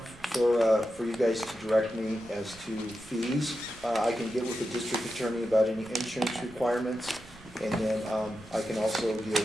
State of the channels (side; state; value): right; noise; rumble, 23 dB below the sound